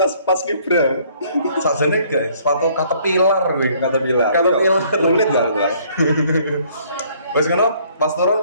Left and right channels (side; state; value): both; inverted; correlation -0.61